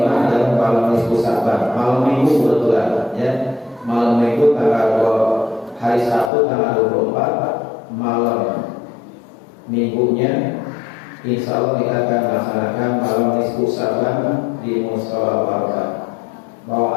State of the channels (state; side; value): drops out; right; at 6.3 s